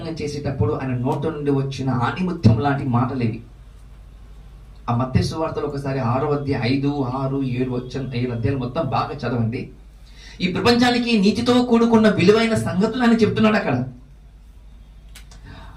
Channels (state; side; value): identical; both; correlation 1.00